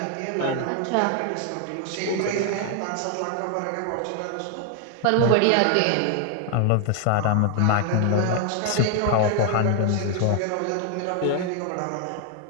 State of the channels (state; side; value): different; both; correlation 0.00